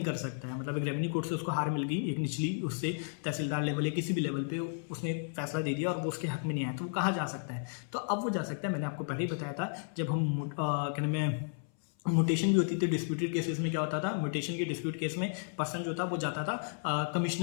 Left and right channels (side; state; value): right; silent; 56 dB below the other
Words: कर सकता है? मतलब एक रेवेन्यू कोर्ट से उसको हार मिल गई, एक निचली उससे तहसीलदार लेवल या किसी भी लेवल पे उसने फैसला दे दिया और वो उसके हक में नहीं आया, तो वो कहाँ जा सकता है? तो अब वो जा सकता है, मैंने आपको पहले ही बताया था, जब हम कहने में म्यूटेशन भी होती थी डिस्प्यूटेड केसेस में। क्या होता था, म्यूटेशन के डिस्प्यूट केस में पर्सन जो था वो जाता था